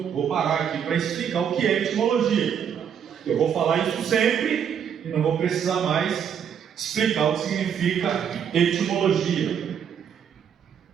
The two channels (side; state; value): left; quieter; 8.1 dB